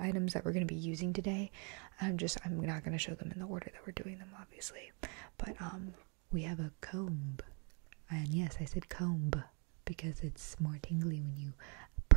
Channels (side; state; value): left; quieter; 36.0 dB